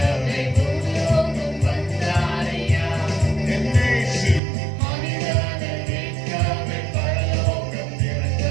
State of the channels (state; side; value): drops out; left; at 4.4 s